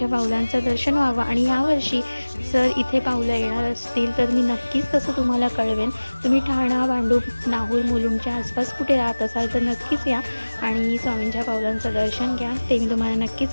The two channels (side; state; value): both; inverted; correlation -1.00